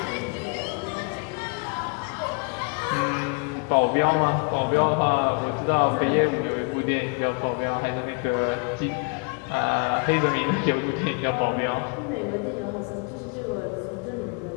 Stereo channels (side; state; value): right; quieter; 35.3 dB